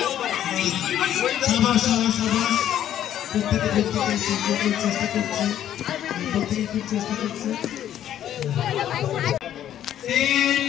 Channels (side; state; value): right; quieter; 11.0 dB